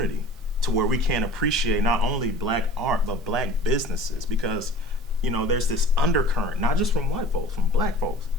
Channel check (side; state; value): both; normal; correlation 0.43